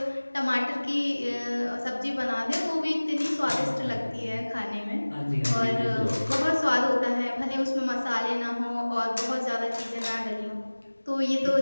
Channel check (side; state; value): both; inverted; correlation -1.00